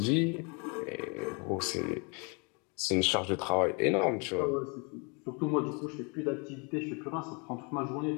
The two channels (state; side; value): quieter; right; 32.9 dB